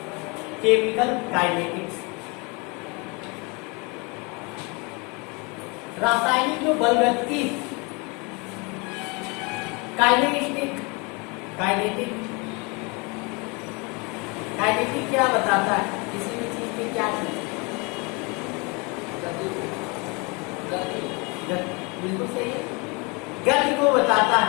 chemical kinetics. रासायनिक जो बलगति, काइनेटिक काइनेटिक काइनेटिक क्या बताता है? किसी भी चीज की क्या चीज? बिल्कुल सही है, गति को बताता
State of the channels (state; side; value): quieter; right; 29.6 dB